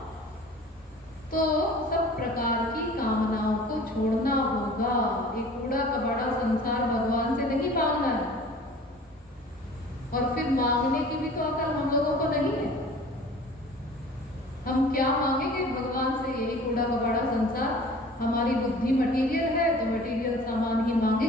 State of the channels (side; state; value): both; normal; correlation 0.45